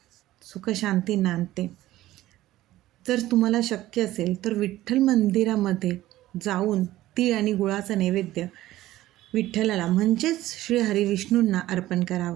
सुखशांती नांदते. जर तुम्हाला शक्य असेल तर विठ्ठल मंदिरामध्ये जाऊन तीळ आणि गुळाचा नैवेद्य विठ्ठलाला म्हणजेच श्री हरिविष्णूंना अर्पण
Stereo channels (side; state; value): left; quieter; 15.4 dB